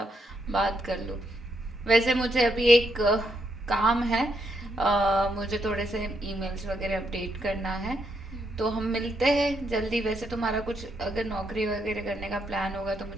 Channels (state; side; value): normal; both; correlation 0.78